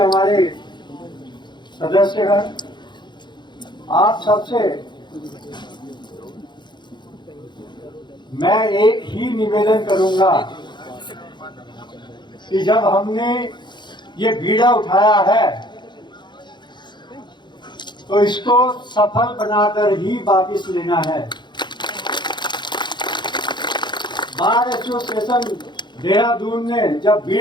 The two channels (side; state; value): right; late; 0.22 ms